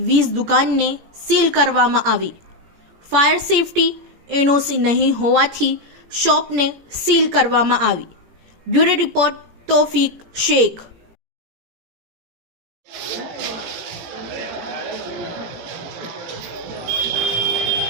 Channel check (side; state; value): left; late; 17 ms